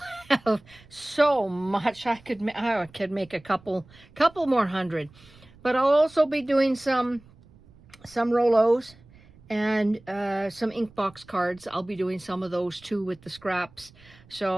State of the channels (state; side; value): noise; right; rumble, 26 dB below the sound